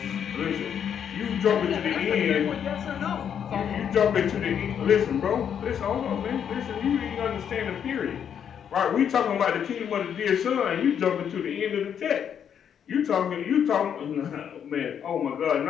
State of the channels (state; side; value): quieter; right; 8.4 dB